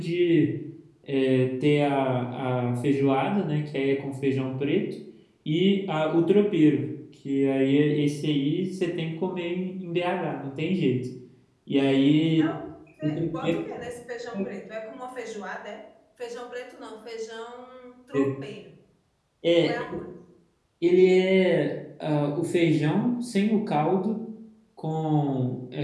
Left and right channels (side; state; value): both; identical; correlation 1.00